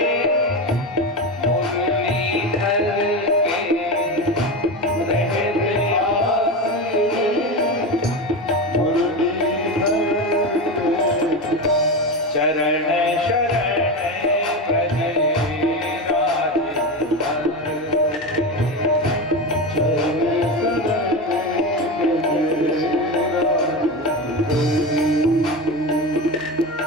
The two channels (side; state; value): both; normal; correlation 0.20